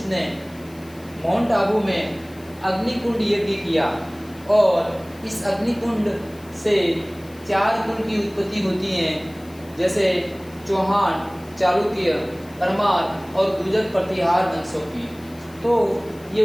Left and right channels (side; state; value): left; noise; hiss, 25 dB below the sound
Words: ने माउंट आबू में अग्निकुंड यज्ञ किया, और इस अग्निकुंड से 4 कुल की उत्पत्ति होती हैं, जैसे चौहान, चालुक्य, परमार और गुर्जर प्रतिहार वंशों की। तो ये